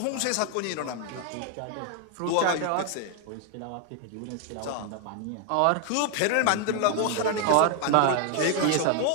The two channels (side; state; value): both; different; correlation 0.01